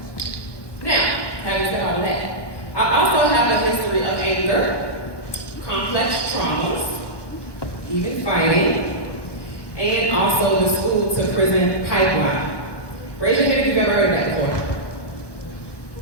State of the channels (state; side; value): late; right; 1.1 ms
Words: Now, having said all of that, I also have a history of anger, complex traumas, even fighting, and also the school to prison pipeline. Raise your hand if you've ever heard of that before.